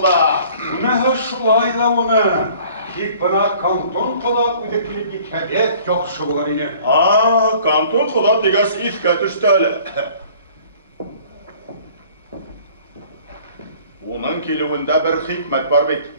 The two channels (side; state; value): both; inverted; correlation -0.52